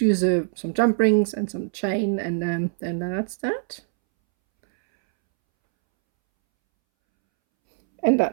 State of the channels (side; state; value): left; silent; 63 dB below the other